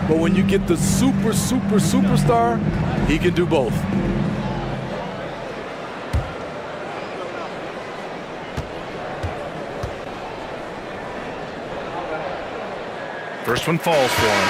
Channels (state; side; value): identical; both; correlation 1.00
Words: But when you get the superstar, he can do both. First one falls for